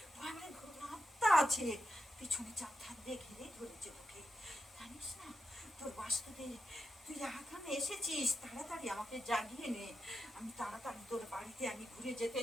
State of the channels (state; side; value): normal; both; correlation 0.88